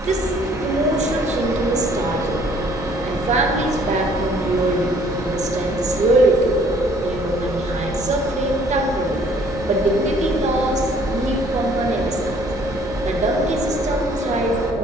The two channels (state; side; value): normal; both; correlation 0.59